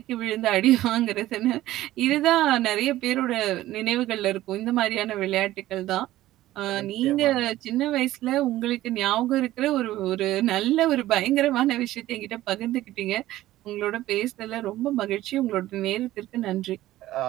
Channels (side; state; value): left; quieter; 15.3 dB